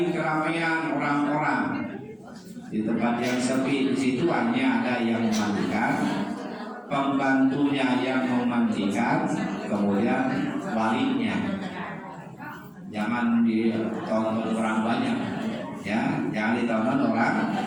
keramaian orang-orang, di tempat yang sepi. Di situ hanya ada yang memandikan, pembantunya yang memandikan, kemudian walinya. Jangan ditonton orang banyak, ya, jangan ditonton orang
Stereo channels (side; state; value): both; identical; correlation 1.00